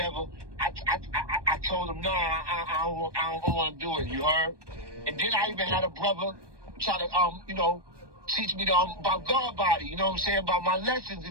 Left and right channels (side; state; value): left; late; 1.2 ms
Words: I told him, nah, I don't want to do it. You heard? And then I even had a brother try to teach me about God body, you know what I'm saying, about my lessons